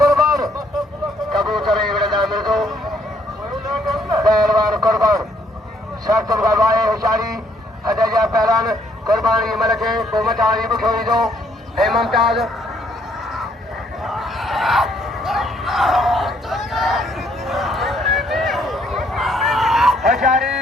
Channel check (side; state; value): both; normal; correlation 0.68